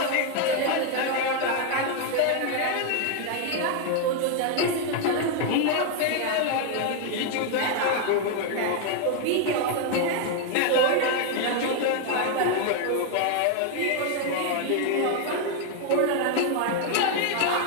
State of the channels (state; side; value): different; both; correlation 0.01